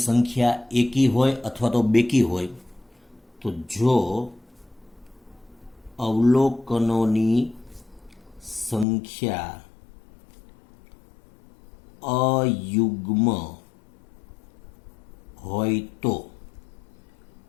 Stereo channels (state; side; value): drops out; right; at 8.8 s